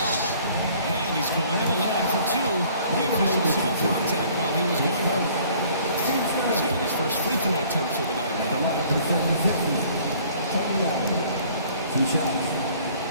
He's getting his first free throw attempt for the night The now. lineup for the 76ers. Tony Allen. 2 shots.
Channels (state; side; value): inverted; both; correlation -0.55